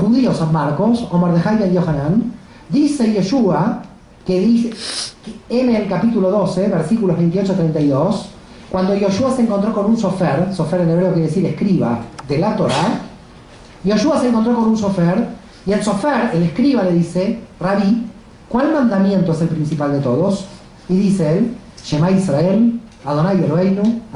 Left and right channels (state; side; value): identical; both; correlation 1.00